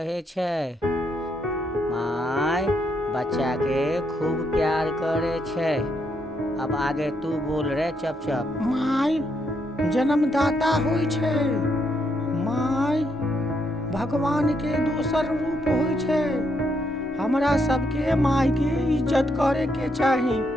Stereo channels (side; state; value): both; normal; correlation 0.77